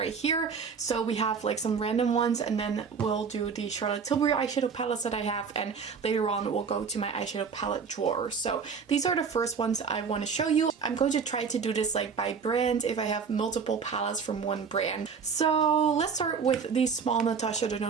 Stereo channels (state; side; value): quieter; left; 5.9 dB